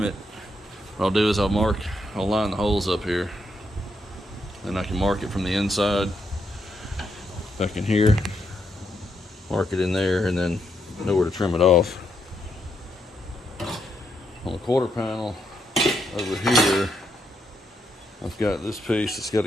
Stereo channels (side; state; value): both; normal; correlation 0.79